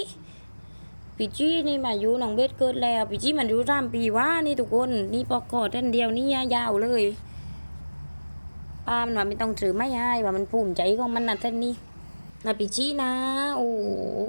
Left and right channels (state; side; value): inverted; both; correlation -1.00